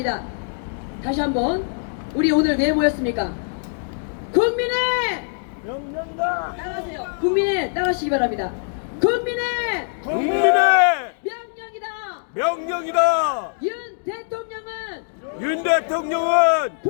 다시 한번 우리 오늘 왜 모였습니까? 국민의 명령다! 따라하세요. 국민의 따라하시기 바랍니다. 국민의 명령이다. 명령이다. 윤 대통령은 윤 대통령은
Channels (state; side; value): silent; right; digital silence